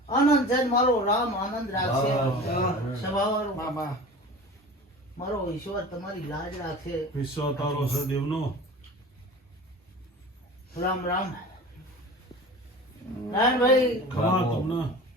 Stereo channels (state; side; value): normal; both; correlation 0.37